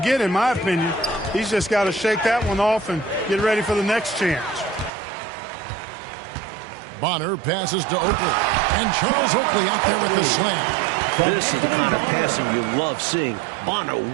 in my opinion. He's just got to shake that one off and get ready for the next chance. Bonner passes to Oakley. And Charles Oakley out there with the slam. This is the kind of passing you love seeing. Bonner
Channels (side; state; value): left; drops out; at 4.9 s